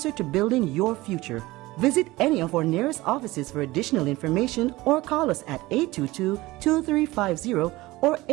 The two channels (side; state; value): left; quieter; 19.5 dB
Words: to building your future. Visit any of our nearest offices for additional information or call us at 822-2350 or